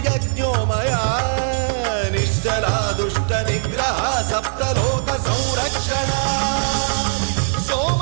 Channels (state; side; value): silent; left; digital silence